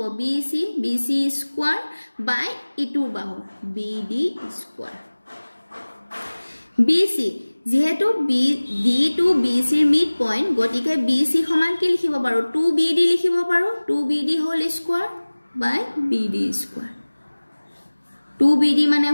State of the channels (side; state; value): both; inverted; correlation -1.00